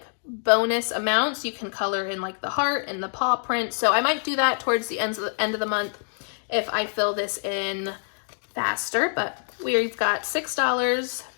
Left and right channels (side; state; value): right; silent; digital silence